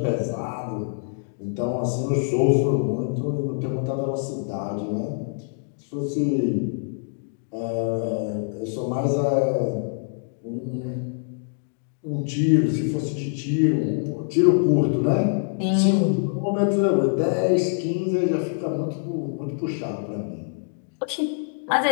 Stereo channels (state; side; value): silent; right; digital silence